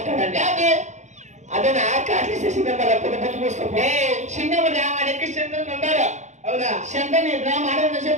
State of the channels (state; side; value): late; left; 0.34 ms